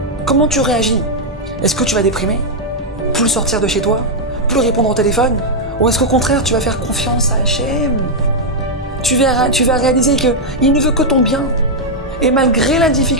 Comment tu réagis? Est-ce que tu vas déprimer? Plus sortir de chez toi? Plus répondre au téléphone? Ou est-ce qu'au contraire tu vas faire confiance à Hachem? Tu vas réaliser qu'il ne veut que ton bien. Et malgré la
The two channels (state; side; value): normal; both; correlation -0.02